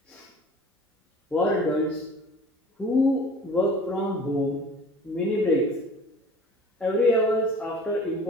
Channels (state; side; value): normal; both; correlation 0.45